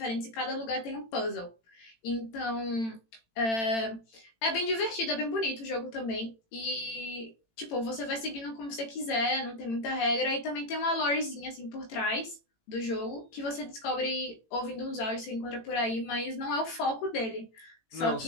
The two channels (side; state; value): right; late; 18 ms